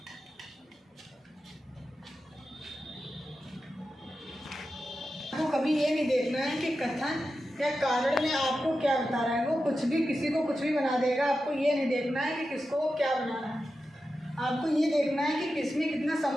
आपको कभी ये नहीं देखना है कि कथन या कारण में आपको क्या बता रहा है, वो कुछ भी किसी को कुछ भी बना देगा। आपको ये नहीं देखना है कि किसको वो क्या बना रहा है, आपको ये देखना है कि किसमें कितना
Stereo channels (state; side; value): normal; both; correlation 0.91